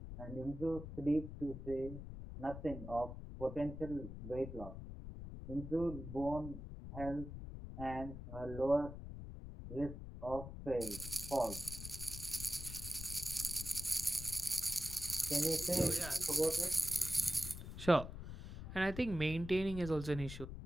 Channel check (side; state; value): left; noise; rumble, 9 dB below the sound